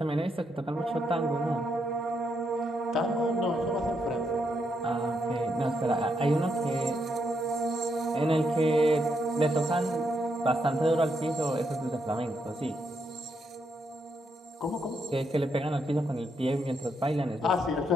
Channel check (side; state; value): both; normal; correlation 0.79